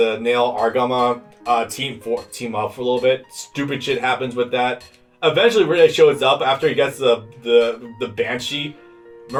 Nail Argama team up for a little bit. Stupid shit happens with that. Eventually, Marida shows up after he gets the Banshee.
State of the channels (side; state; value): both; identical; correlation 1.00